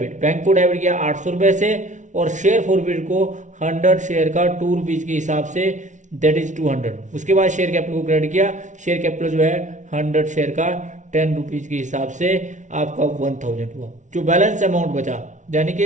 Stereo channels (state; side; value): late; left; 0.36 ms